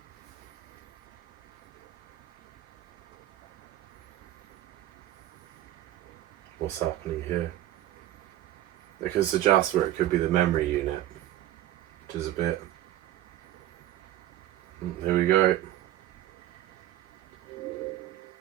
What's happening here? Because the Jasper, it could be the memory unit, which is a bit Here we go.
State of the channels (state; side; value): quieter; left; 13.7 dB